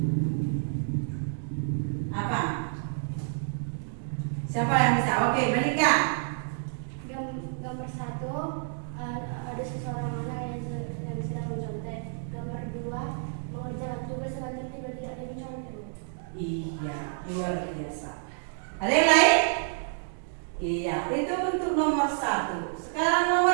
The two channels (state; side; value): silent; left; digital silence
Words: Apa? Siapa yang bisa? Oke, Malika. Gambar 1 ada ada seseorang anak yang sedang mencontek. Gambar 2, mengerjakan tugas dengan tertib dan tidak ada yang mencontek. Iya, luar biasa. Ada yang lain? Iya, itu untuk nomor 1. Sekarang